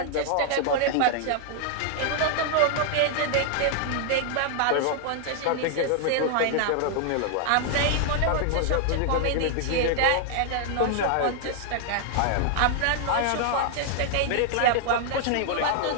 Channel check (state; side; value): different; both; correlation 0.00